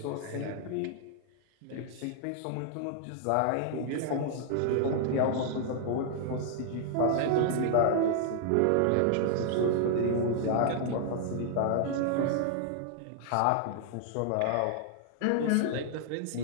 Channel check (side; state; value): both; different; correlation -0.01